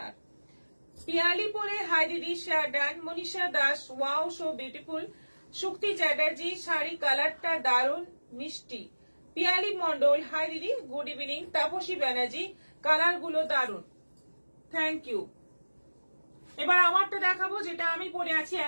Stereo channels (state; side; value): inverted; both; correlation -1.00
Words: পিয়ালি পরে হাই দিদি, share done. Manisha Das, wow so beautiful. Shukti Chatterjee, sari কালারটা দারুণ মিষ্টি। পিয়ালি মন্ডল, হাই দিদি, good evening. Tapasi Banerjee, colour গুলো দারুণ, থ্যাংক ইউ। এবার আমারটা দেখাবো, যেটা আমি পরে আছি,